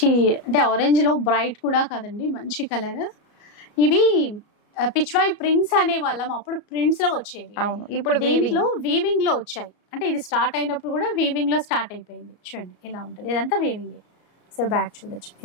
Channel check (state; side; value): late; right; 34 ms